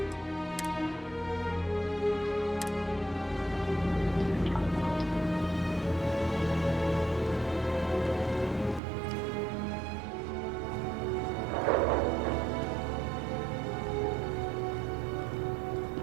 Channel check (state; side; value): drops out; left; at 8.8 s